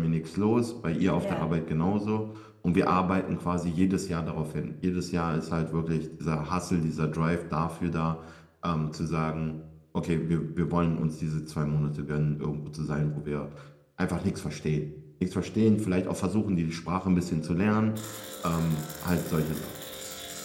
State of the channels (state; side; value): identical; both; correlation 1.00